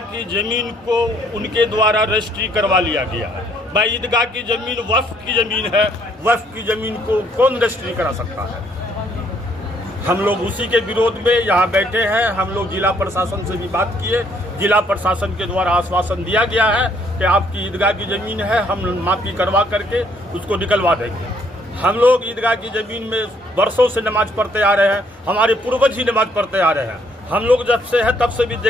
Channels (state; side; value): normal; both; correlation 0.67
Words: की ज़मीन को उनके द्वारा रजिस्ट्री करवा लिया गया है। भाई ईदगाह की ज़मीन वक्फ की ज़मीन है, वक्फ की ज़मीन को कौन रजिस्ट्री करा सकता है। हम लोग उसी के विरोध में यहाँ बैठे हैं। हम लोग जिला प्रशासन से भी बात किए, जिला प्रशासन के द्वारा आश्वासन दिया गया है कि आपकी ईदगाह की ज़मीन है, हम माफ़ी करवा करके उसको निकलवा देंगे। हम लोग ईदगाह की ज़मीन में वर्षों से नमाज पढ़ते आ रहे हैं, हमारे पूर्वज ही नमाज पढ़ते आ रहे हैं। हम लोग जब से है तब से भी